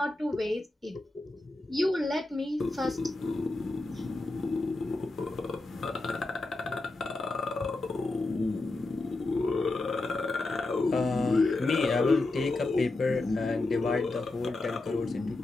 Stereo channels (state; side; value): quieter; right; 3.0 dB